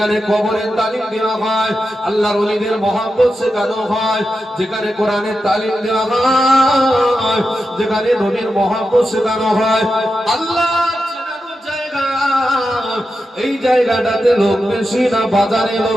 কবরের তালিম দেওয়া হয়, আল্লাহর ওলিদের মহব্বত শেখানো হয়, যেখানে কোরআনের তালিম দেওয়া হয়, যেখানে নবীর মহব্বত শেখানো হয়, আল্লাহর চেনানোর জায়গা। এই জায়গাটাতে লোক বেশি না বাজারে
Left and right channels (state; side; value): normal; both; correlation 0.89